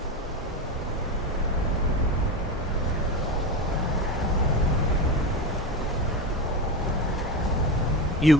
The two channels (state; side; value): normal; both; correlation 0.21